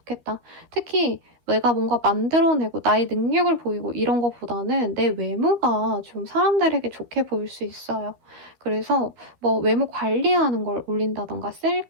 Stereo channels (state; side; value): late; left; 12 ms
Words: 특히 내가 뭔가 만들어내고 나의 능력을 보이고 이런 것보다는 내 외모가 좀 사람들에게 좋게 보일 수 있어요. 그래서 뭐 외모 관리하는 걸 올린다던가